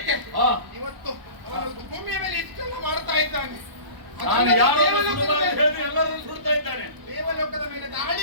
ಹಾ. ಇವತ್ತು ಅವನು ಭೂಮಿಯ ಮೇಲೆ ಇಷ್ಟೆಲ್ಲ ಮಾಡ್ತಾ ಇದ್ದಾನೆ. ನಾನು ಯಾರೋ ದೇವಲೋಕದ ಮೇಲೆ- ಹೇಳಿ ಎಲ್ಲರನ್ನು ಸುಡ್ತಾ ಇದ್ದಾನೆ. ದೇವಲೋಕದ ಮೇಲೆ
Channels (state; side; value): late; left; 1.0 ms